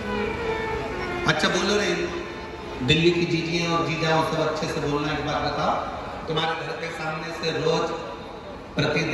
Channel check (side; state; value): both; identical; correlation 1.00